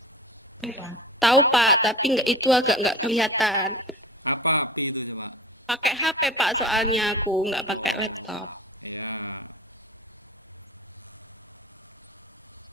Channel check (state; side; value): normal; both; correlation 0.37